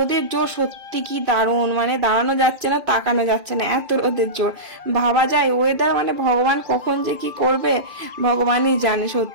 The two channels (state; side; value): late; left; 2.5 ms